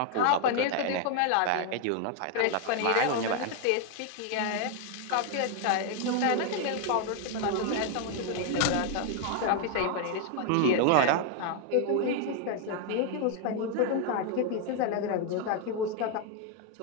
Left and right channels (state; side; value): different; both; correlation 0.00